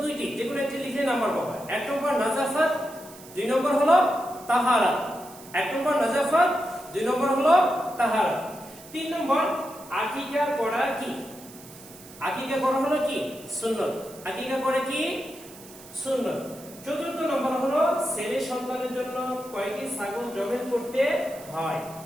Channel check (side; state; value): right; noise; hiss, 19 dB below the sound